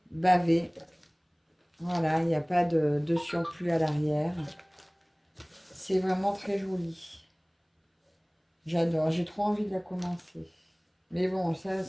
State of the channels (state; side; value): identical; both; correlation 1.00